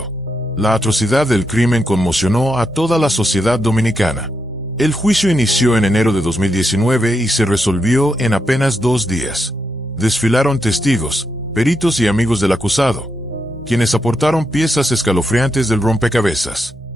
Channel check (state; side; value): normal; both; correlation 0.83